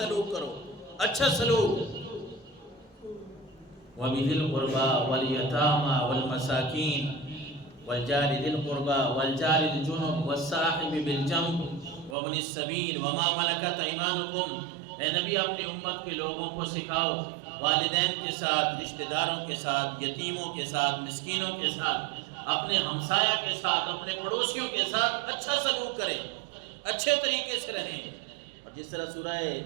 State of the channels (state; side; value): drops out; left; at 12.2 s